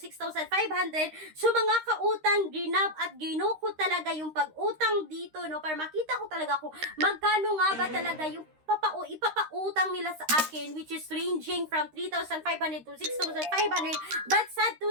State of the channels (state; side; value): late; left; 13 ms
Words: So mga kautang, ginab at gino ko talaga yung pag-utang dito para makita ko talaga kung magkano nga ba talaga yung ipapautang nila sa akin, which is ranging from 3,500 to 6,500. But sad to